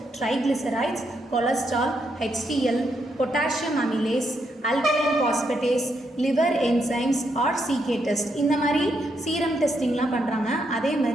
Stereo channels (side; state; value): both; normal; correlation 0.79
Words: triglycerides, cholesterol, HDL, potassium amylase, alkaline phosphatase, liver enzymes or CK test, இந்த மாதிரி சீரம் டெஸ்டிங்லாம் பண்ணுறாங்க. அதே